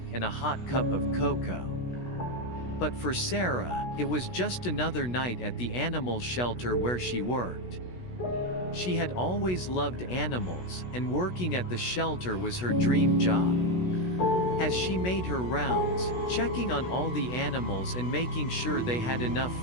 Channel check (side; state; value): right; late; 16 ms